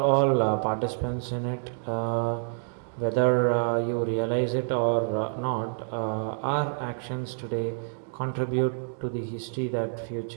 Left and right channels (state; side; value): silent; left; digital silence